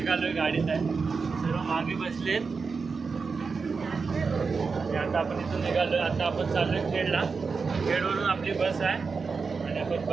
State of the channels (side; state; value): left; quieter; 4.9 dB